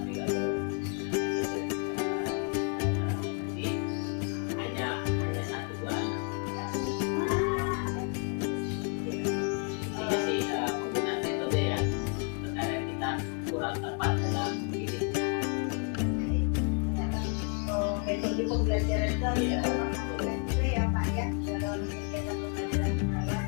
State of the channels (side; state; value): right; quieter; 38.1 dB